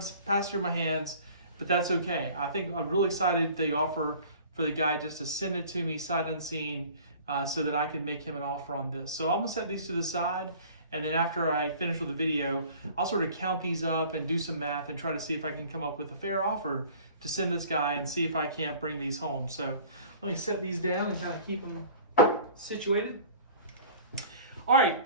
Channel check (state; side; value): inverted; both; correlation -0.47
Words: pass through my hands, but that's okay. I think I'm really excited the offer for the guy just to send it to me sight unseen so that I can make him an offer on this. So I'm gonna set these to the side, and then after I finish with the video, I'll sort of count these up and do some math and try to see if I can come up with a fair offer to send this guy and see if I can't bring these home. So let me set these down and kind of keep them situated. All